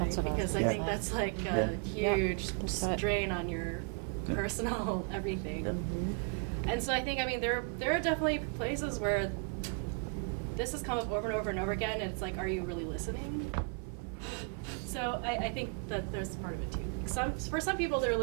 Because I think that's like a huge strain on your personal everything. And so I think, there are definitely places where this has come up over and over and over again, and it's like, are you really listening? So I think that there's part of it too. For some people, they're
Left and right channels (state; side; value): quieter; left; 35.7 dB